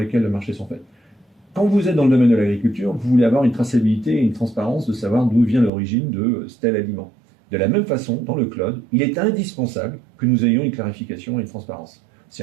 le marché sont faits. Quand vous êtes dans le domaine de l'agriculture, vous voulez avoir une traçabilité et une transparence de savoir d'où vient l'origine de tel aliment. De la même façon, dans le cloud, il est indispensable que nous ayons une clarification et une transparence. C'est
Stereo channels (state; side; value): drops out; left; at 5.7 s